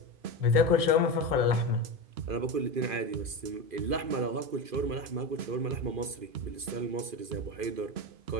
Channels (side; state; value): left; late; 2.5 ms